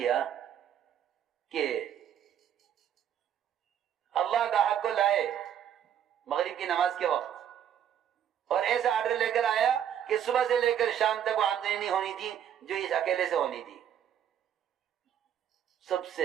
کہ اللہ گاہک کو لائے مغرب کی نماز کے وقت اور ایسا آرڈر لے کر آیا کہ صبح سے لے کر شام تک وہ آمدنی نہیں ہونی تھی جو اس اکیلے سے ہونی تھی، سب سے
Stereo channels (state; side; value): quieter; left; 9.6 dB